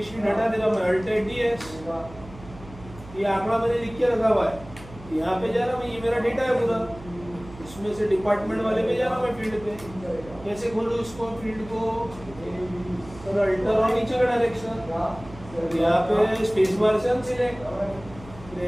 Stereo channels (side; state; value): right; noise; hum, 18 dB below the sound